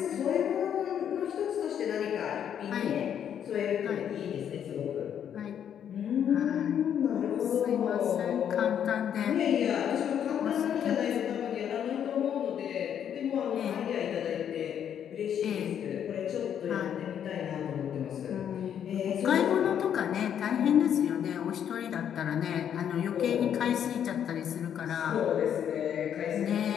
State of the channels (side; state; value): right; quieter; 9.1 dB